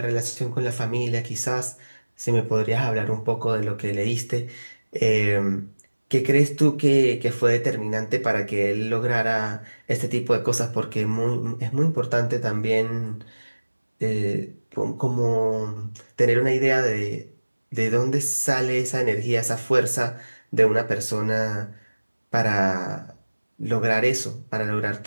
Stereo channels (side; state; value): both; inverted; correlation -1.00